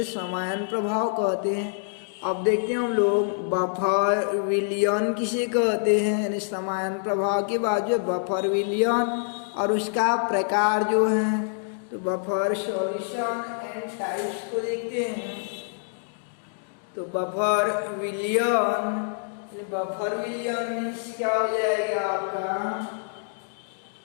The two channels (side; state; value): right; silent; digital silence